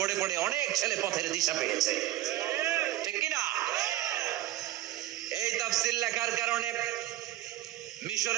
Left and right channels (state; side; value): quieter; left; 14.4 dB